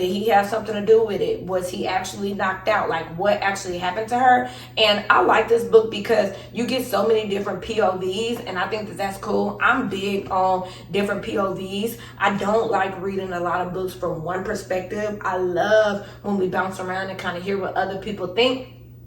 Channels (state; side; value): identical; both; correlation 1.00